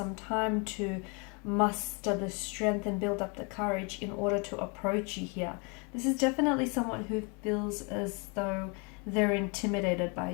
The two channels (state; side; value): quieter; right; 33.0 dB